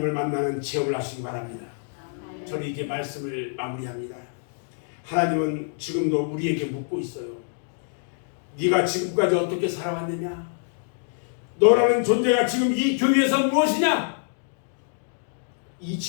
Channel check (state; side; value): silent; right; digital silence